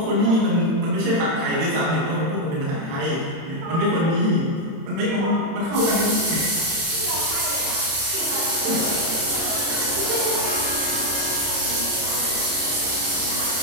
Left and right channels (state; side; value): late; left; 31 ms